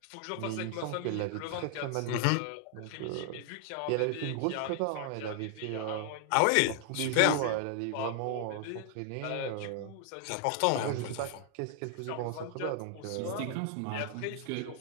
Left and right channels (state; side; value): different; both; correlation 0.00